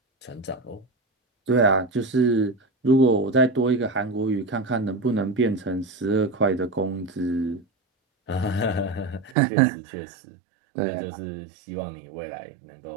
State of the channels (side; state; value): left; drops out; at 9.3 s